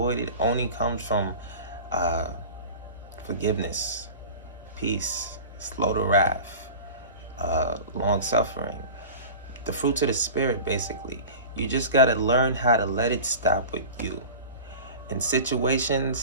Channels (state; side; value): inverted; both; correlation -0.36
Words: only comes from uh, forgiveness, peace, slow to wrath, long suffering, the fruits of the Spirit, basically. You just got to learn how to let it stop with you. In